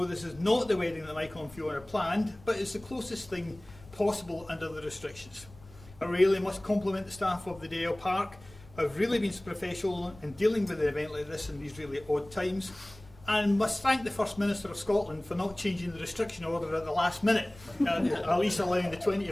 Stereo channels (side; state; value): left; noise; rumble, 22 dB below the sound